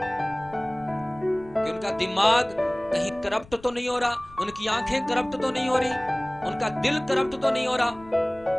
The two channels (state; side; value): noise; left; rumble, 22 dB below the sound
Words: कि उनका दिमाग कहीं करप्ट तो नहीं हो रहा, उनकी आंखें करप्ट तो नहीं हो रही, उनका दिल करप्ट तो नहीं हो रहा।